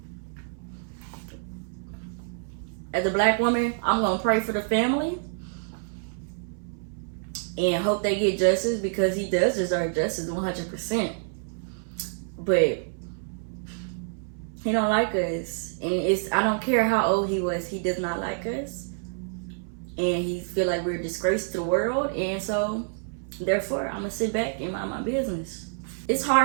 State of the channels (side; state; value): left; silent; 60 dB below the other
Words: As a black woman, I'm going to pray for the family and hope they get justice, because he does deserve justice 100%. But he don't like us. And I don't care how old he was. He does not like us. And he feel like we're a disgrace to the world. And so, therefore, I'm gonna sit back and mind my business. It's